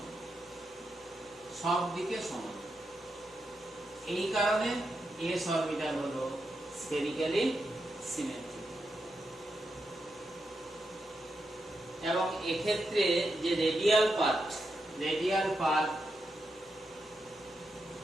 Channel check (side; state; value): both; normal; correlation 0.85